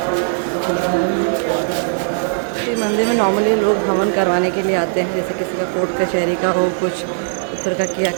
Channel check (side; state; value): left; silent; digital silence